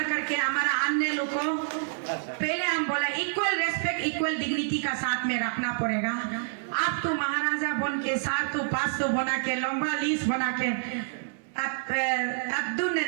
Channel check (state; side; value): silent; left; 59 dB below the other